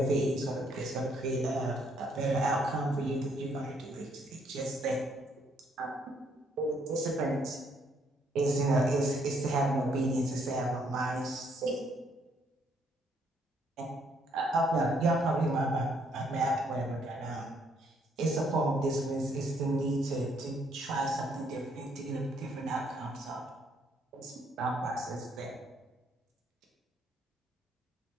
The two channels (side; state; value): both; normal; correlation 0.69